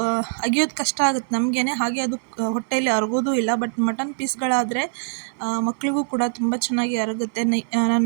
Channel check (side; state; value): left; silent; 64 dB below the other